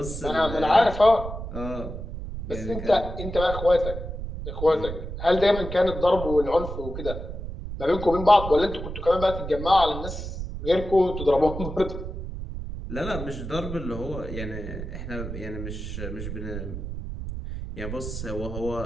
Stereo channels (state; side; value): noise; right; rumble, 7 dB below the sound